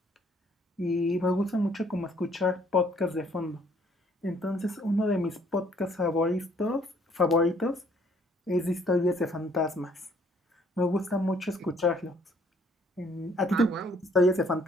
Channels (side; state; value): both; normal; correlation 0.63